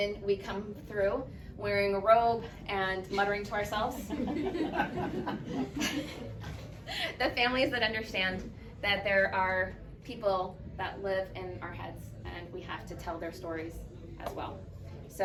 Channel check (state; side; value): identical; both; correlation 1.00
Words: we come through wearing a robe and muttering to ourselves. The families that understand that there are people that live in our heads and we have to tell their stories as well.